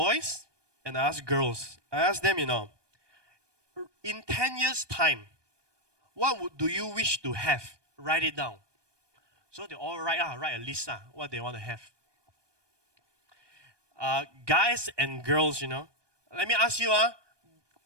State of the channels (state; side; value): late; left; 1.2 ms